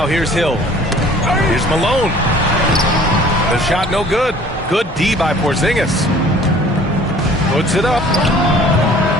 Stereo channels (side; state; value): both; normal; correlation 0.51